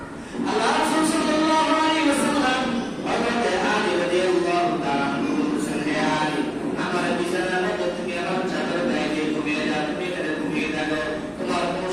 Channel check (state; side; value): identical; both; correlation 1.00